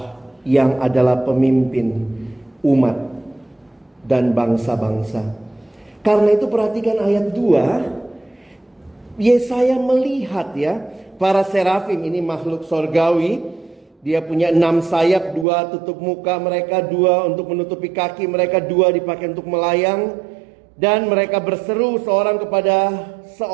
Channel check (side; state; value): left; drops out; at 15.5 s